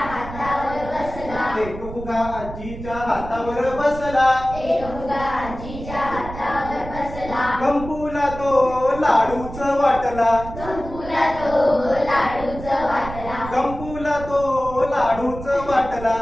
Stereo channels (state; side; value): noise; right; rumble, 11 dB below the sound